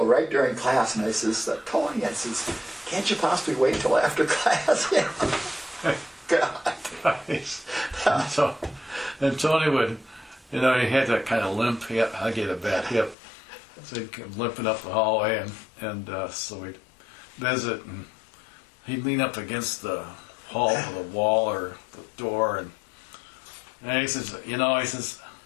right during class. And I says, Tony, I says, can't you possibly wait till after class? God. Nice. And Tony would You know, he had that kind of limp hip. I get a bad hip. So he'd come limping up the hallway, and so we'd visit, and he'd lean up against the wall or the door, and he says,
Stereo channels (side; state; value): right; drops out; at 13.2 s